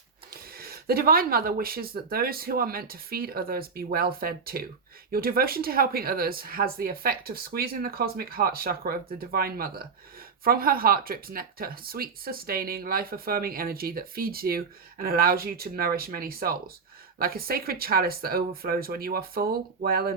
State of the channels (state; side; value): quieter; left; 5.3 dB